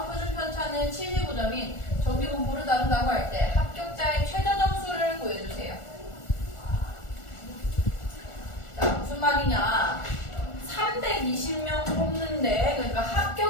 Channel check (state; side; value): late; right; 1.4 ms